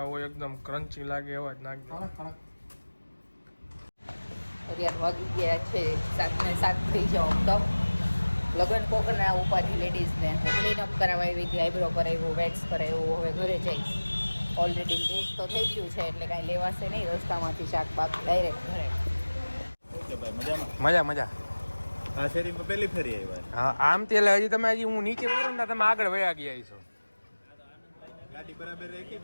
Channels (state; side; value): inverted; both; correlation -1.00